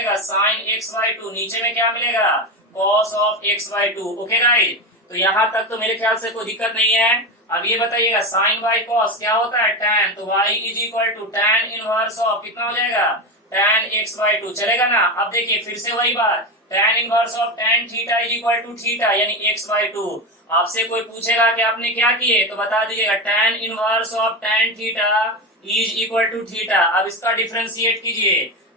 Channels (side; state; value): both; normal; correlation 0.18